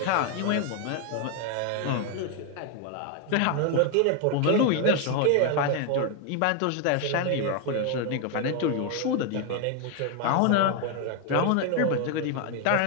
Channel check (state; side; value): different; both; correlation 0.01